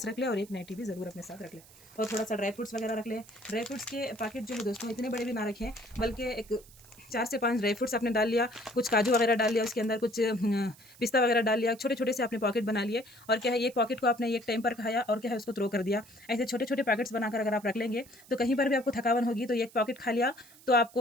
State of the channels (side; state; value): right; noise; hiss, 23 dB below the sound